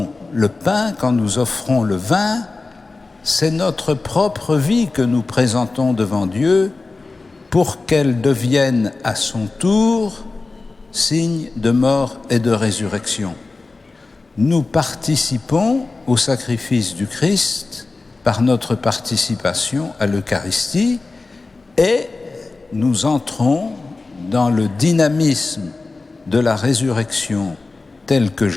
le pain, quand nous offrons le vin, c'est notre propre vie que nous présentons devant Dieu pour qu'elle devienne à son tour signe de mort et de résurrection. Nous participons au sacrifice du Christ par notre participation à l'Eucharistie et nous entrons dans le dynamisme de la résurrection tel que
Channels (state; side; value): quieter; right; 3.6 dB